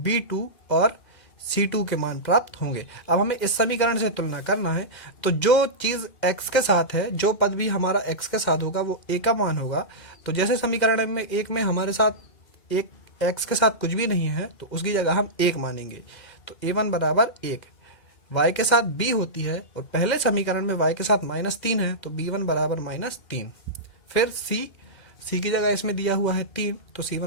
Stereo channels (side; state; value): right; late; 2.0 ms